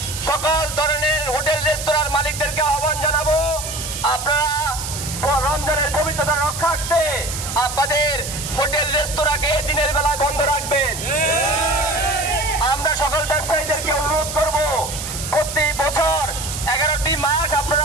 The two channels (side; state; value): right; noise; hiss, 7 dB below the sound